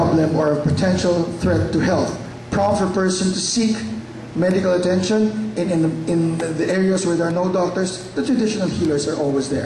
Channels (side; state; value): both; identical; correlation 1.00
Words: or a potential threat to health. Prompt for a person to seek medical attention. In the areas where there are no doctors, the traditional healers are always